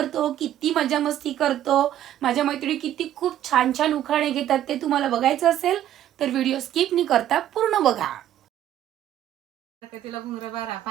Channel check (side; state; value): left; quieter; 11.9 dB